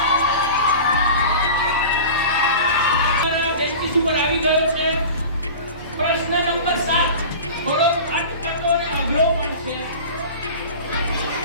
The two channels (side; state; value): both; inverted; correlation -0.35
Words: આવી ગયો છે. પ્રશ્ન નંબર 7 થોડો અટપટો અને અઘરો પણ છે.